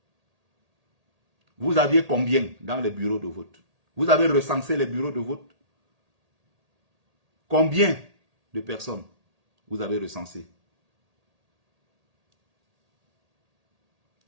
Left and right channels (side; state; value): left; late; 1.8 ms